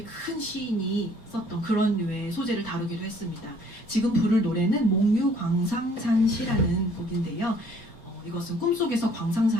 큰 시인이 썼던 그런 류의 소재를 다루기도 했습니다. 지금 부를 노래는 몽유광상산시라는 곡인데요. 이것은 꿈속에서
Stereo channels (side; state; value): right; late; 4.3 ms